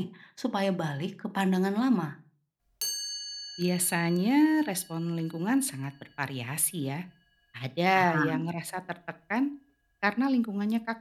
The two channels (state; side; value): identical; both; correlation 1.00